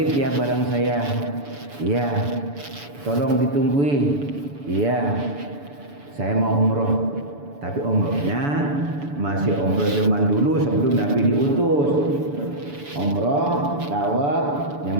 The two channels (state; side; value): late; left; 7.0 ms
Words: ya barang saya. Iya. Tolong ditunggui. Iya. Saya mau umroh. Tapi umrohnya masih umroh zaman dulu sebelum Nabi diutus. Umroh, tawaf,